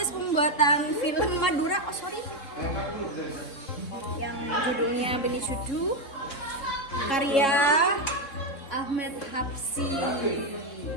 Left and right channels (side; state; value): right; late; 3.7 ms